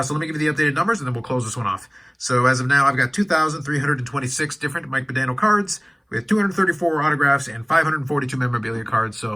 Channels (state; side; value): identical; both; correlation 1.00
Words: so let me give you the updated numbers, and then we'll close this one off. So as of now, I've got 2,326 different Mike Modano cards with 234 autographs and 542 memorabilia cards.